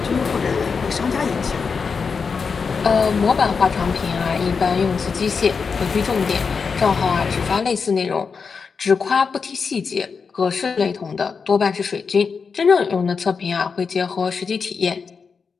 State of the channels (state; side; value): quieter; right; 5.4 dB